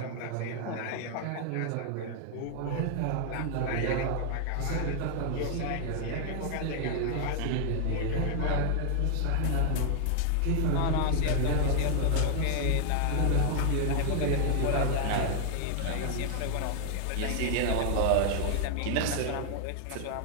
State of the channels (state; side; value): different; both; correlation 0.00